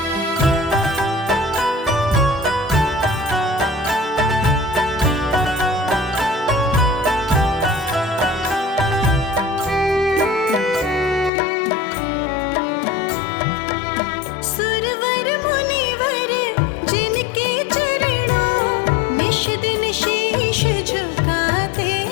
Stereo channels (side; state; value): right; drops out; at 11.3 s